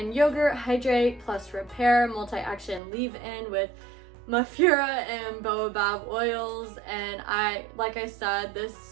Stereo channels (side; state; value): left; drops out; at 2.8 s